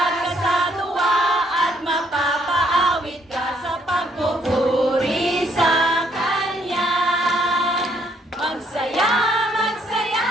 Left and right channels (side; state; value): both; normal; correlation 0.69